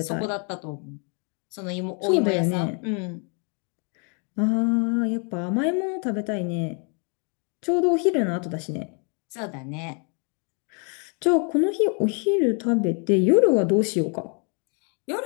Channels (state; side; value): quieter; right; 37.7 dB